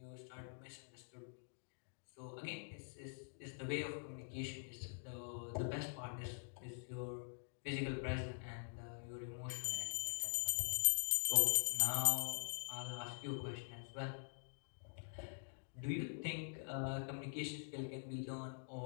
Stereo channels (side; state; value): right; silent; digital silence